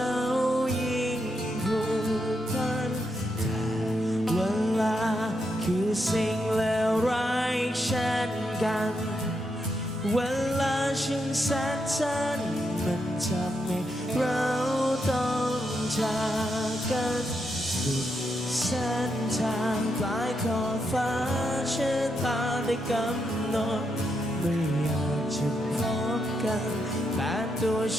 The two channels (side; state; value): both; normal; correlation 0.82